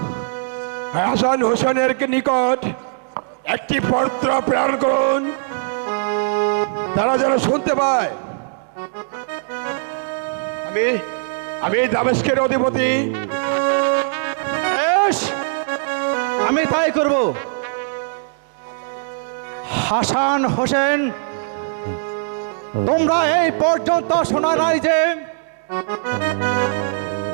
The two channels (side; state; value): left; silent; digital silence